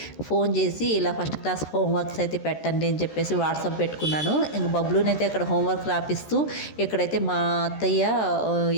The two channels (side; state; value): right; late; 13 ms